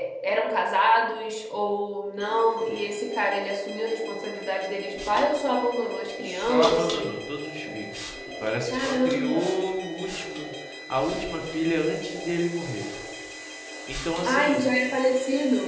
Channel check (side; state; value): both; identical; correlation 1.00